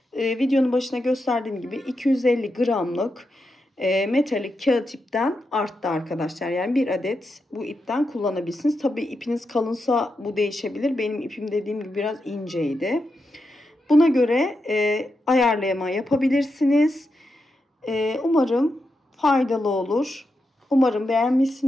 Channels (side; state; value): both; normal; correlation 0.86